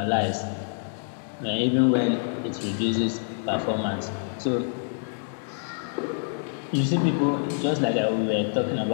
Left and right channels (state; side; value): silent; right; digital silence